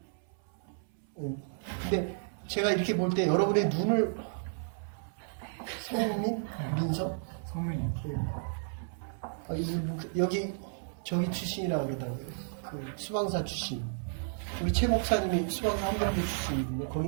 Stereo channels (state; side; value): silent; left; 56 dB below the other